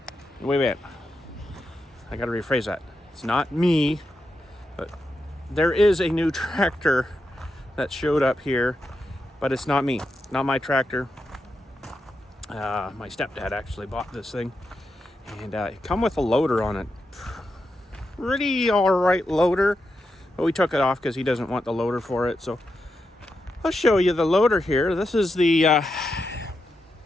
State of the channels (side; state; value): both; normal; correlation 0.86